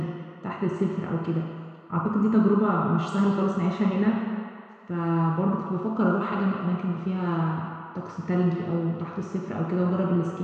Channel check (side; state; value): both; identical; correlation 1.00